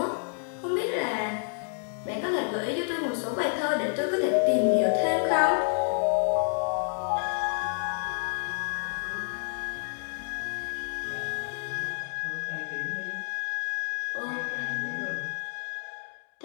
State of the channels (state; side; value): silent; right; digital silence